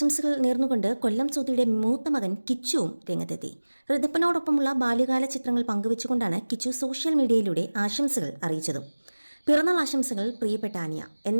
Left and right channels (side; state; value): both; inverted; correlation -1.00